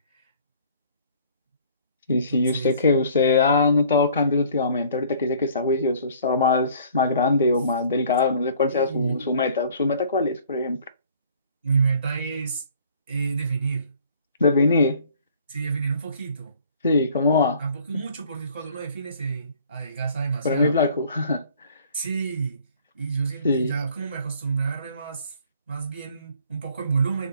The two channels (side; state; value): both; inverted; correlation -0.55